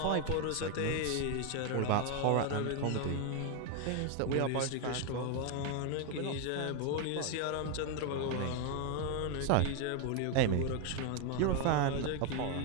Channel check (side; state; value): both; different; correlation 0.01